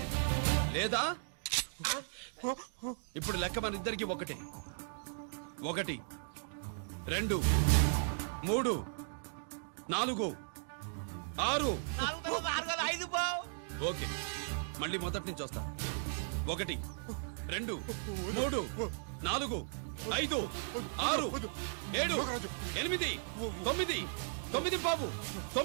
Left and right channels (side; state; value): left; silent; digital silence